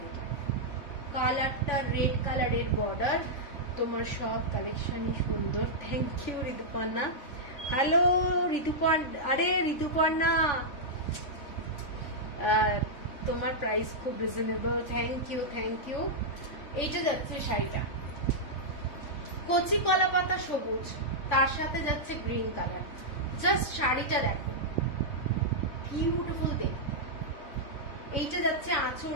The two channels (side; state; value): right; late; 3.5 ms